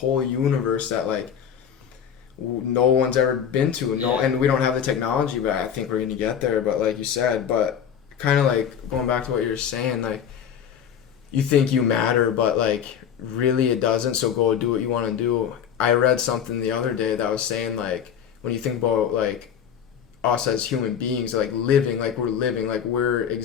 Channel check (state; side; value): quieter; right; 8.4 dB